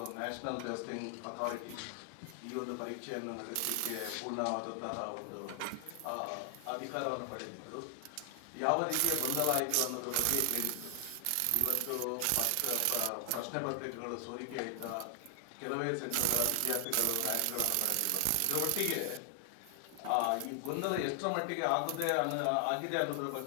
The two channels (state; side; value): different; both; correlation 0.00